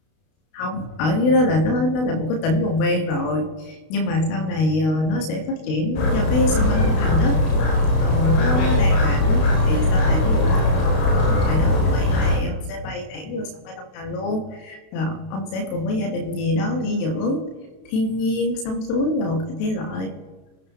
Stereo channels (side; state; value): right; late; 32 ms